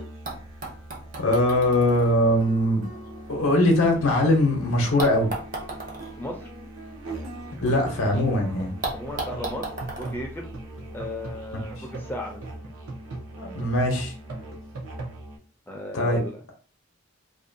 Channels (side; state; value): both; normal; correlation 0.38